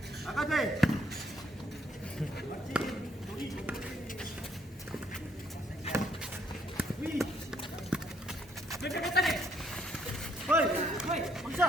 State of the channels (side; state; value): both; normal; correlation 0.69